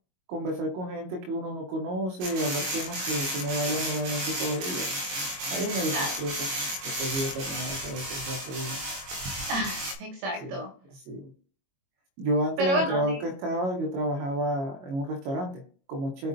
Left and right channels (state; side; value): late; left; 22 ms